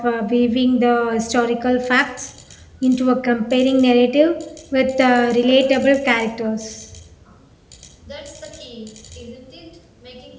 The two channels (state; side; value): identical; both; correlation 1.00